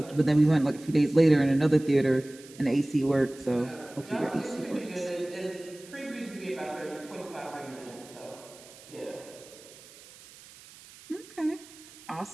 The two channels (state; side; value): noise; right; hiss, 21 dB below the sound